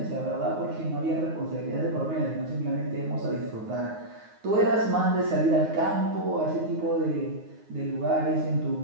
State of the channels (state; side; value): late; left; 9.5 ms